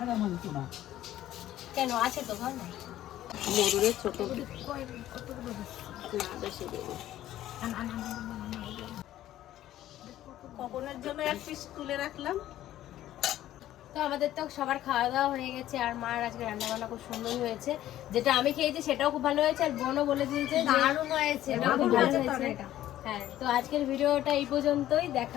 কেন আছে তো ঘর? মরুরের ছোট না বেশি দেবো। কখনের জন্য এক পিস তুলে রাখলাম। তো আমাদের তো সবার খাওয়া দাওয়া হয়ে গেছে, আর মার আজকে রান্না বান্না খুব সুন্দর হয়েছে। যেটা আমি খেয়েছি সেটাও খুব ভালো হয়েছে, আর বোনও বলে দিয়েছে যে দারুণ হয়েছে, এটাও খুব ভালো হয়েছে। হ্যাঁ, তো আজকের ভিডিওটা এই পর্যন্তই।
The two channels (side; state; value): right; quieter; 13.3 dB